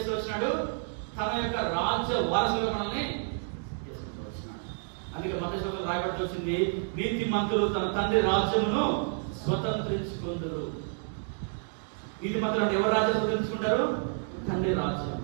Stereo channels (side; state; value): left; silent; 58 dB below the other